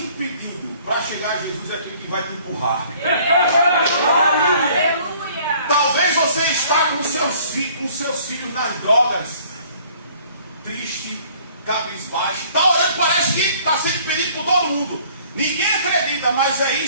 para chegar a Jesus é aquilo que vai te empurrar. Talvez você está com seus filhos nas drogas, triste, cabisbaixo, está orando, parece que está sendo pedido por todo mundo. Ninguém acredita, mas é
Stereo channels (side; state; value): both; inverted; correlation -0.56